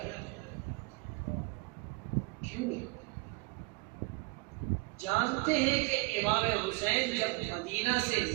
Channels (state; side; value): quieter; left; 25.4 dB